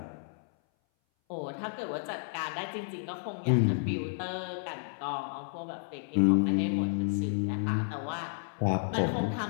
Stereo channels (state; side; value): silent; right; 57 dB below the other